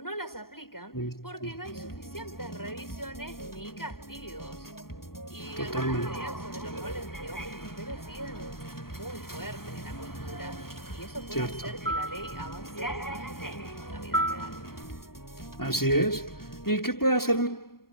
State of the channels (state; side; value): late; right; 0.93 ms